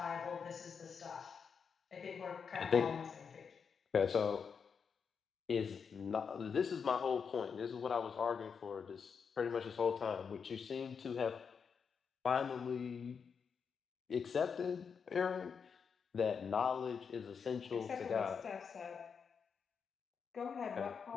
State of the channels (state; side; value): quieter; right; 6.2 dB